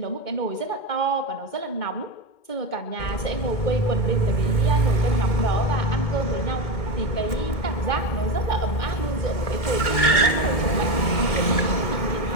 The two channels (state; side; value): late; right; 2.2 ms